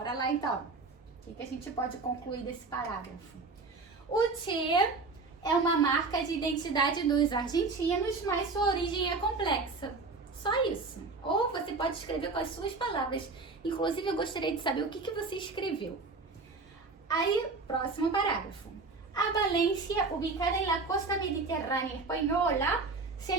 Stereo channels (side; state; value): left; quieter; 4.0 dB